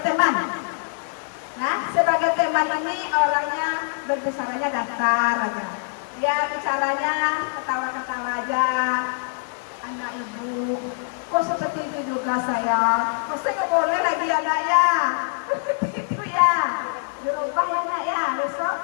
teman. Nah, sebagai teman ini orangnya berbicaranya datar aja. Dia bicaranya ketawa-ketawa aja. Anak Ibu, kok seperti itu juga saya? Kok saya nggak boleh lagi anak ya? Seperti itu ya. Dirubah ya anak ya. Besok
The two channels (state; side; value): silent; right; digital silence